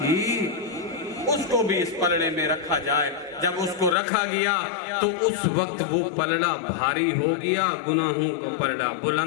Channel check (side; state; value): right; drops out; at 4.0 s